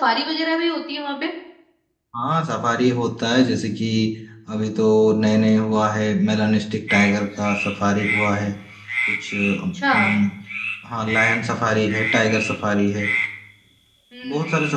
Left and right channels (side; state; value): both; identical; correlation 1.00